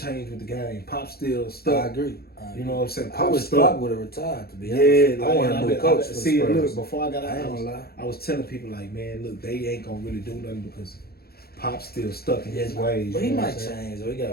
with the game. Pop still I stuck. agree. You know what I'm saying? I Pop wish stuck. Pop would have retired, to be honest. Yeah, I want a new coach for the See, Spurs. look, before I got I ain't out, gonna lie. I was telling people like, man, look, they ain't gonna really do nothing because Pop's still stuck in his Yeah, ways. But he you know might what I'm saying? change, though. He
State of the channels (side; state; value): right; late; 0.45 ms